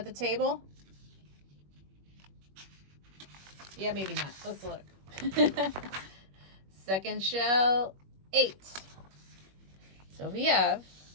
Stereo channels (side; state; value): left; late; 21 ms